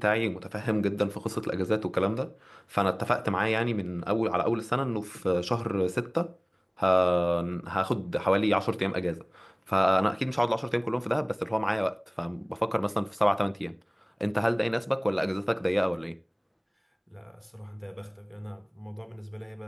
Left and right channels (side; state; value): both; identical; correlation 1.00